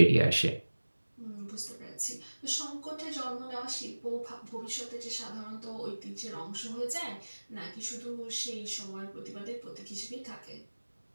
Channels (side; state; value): both; inverted; correlation -1.00